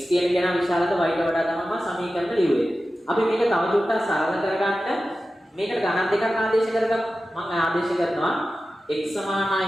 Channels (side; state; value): both; normal; correlation 0.94